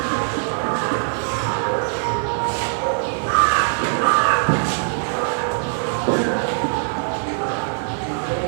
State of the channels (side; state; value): left; silent; digital silence